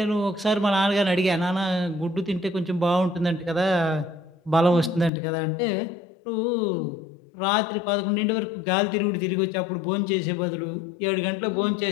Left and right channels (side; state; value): right; drops out; at 5.1 s